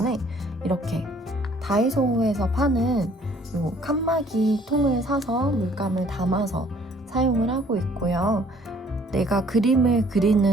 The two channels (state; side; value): normal; both; correlation 0.59